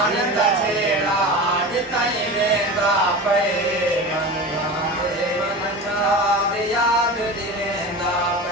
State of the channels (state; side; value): normal; both; correlation 0.30